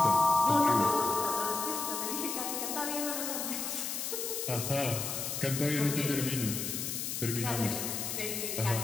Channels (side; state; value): left; noise; hiss, 3 dB below the sound